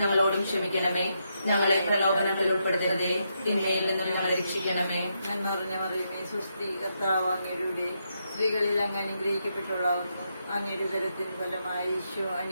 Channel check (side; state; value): both; inverted; correlation -0.81